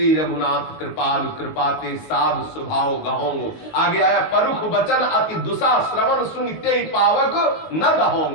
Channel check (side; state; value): right; late; 19 ms